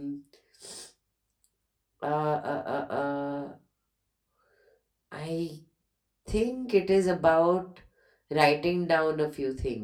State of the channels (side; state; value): both; identical; correlation 1.00